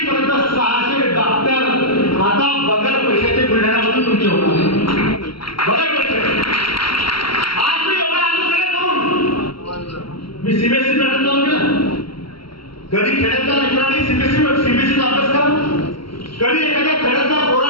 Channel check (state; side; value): late; right; 0.74 ms